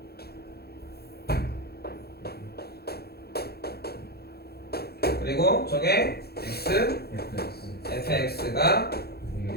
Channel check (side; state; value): right; late; 0.46 ms